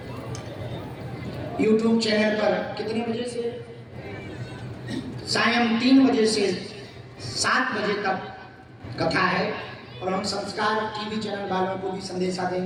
यूट्यूब चैनल पर कितने बजे से? सायं 3 बजे से 7 बजे तक कथा है। और हम संस्कार टीवी चैनल वालों को भी संदेशा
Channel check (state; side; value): identical; both; correlation 1.00